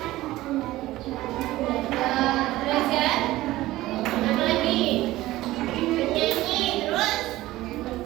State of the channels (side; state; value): left; quieter; 16.9 dB